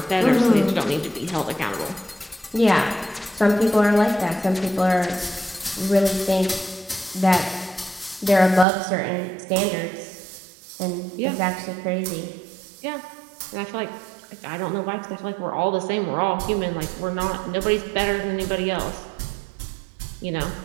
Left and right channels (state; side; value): drops out; left; at 8.7 s